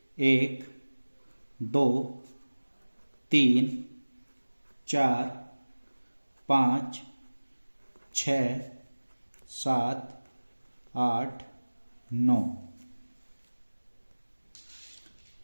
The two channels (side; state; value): both; inverted; correlation -1.00